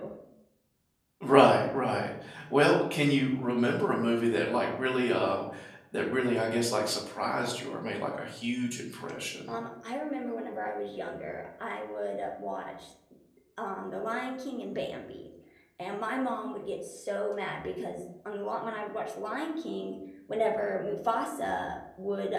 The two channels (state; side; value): identical; both; correlation 1.00